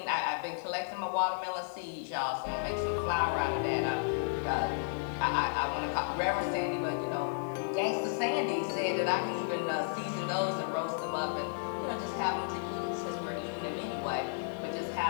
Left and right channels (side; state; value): right; silent; digital silence